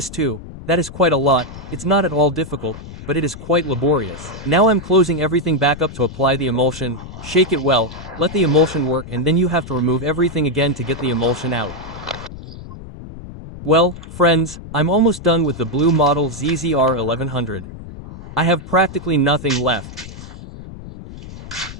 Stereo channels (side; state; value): left; noise; rumble, 14 dB below the sound